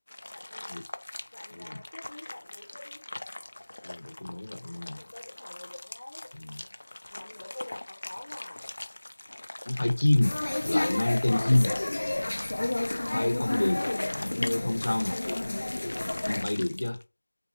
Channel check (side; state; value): both; inverted; correlation -1.00